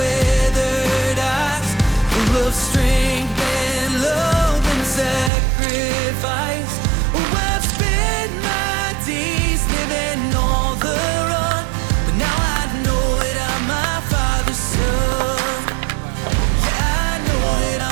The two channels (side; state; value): left; drops out; at 5.3 s